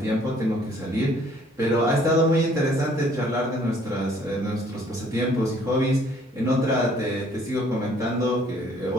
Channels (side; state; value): both; normal; correlation 0.60